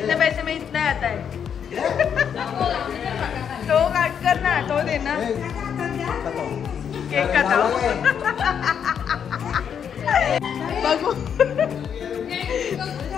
पैसे में इतना आता है. तो काट कर ना, तो दे ना. केक काटाओ. बघू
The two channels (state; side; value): quieter; right; 7.9 dB